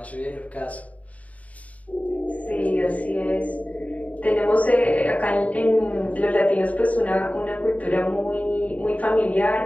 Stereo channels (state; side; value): late; right; 0.069 ms